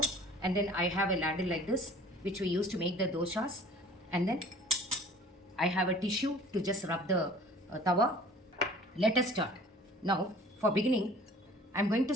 and then I have a ladle like this which we use to make the dosas, and then I have a tissue to just rub the tawa. Let us start. Now, for beginning, I'm going to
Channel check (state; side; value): normal; both; correlation 0.48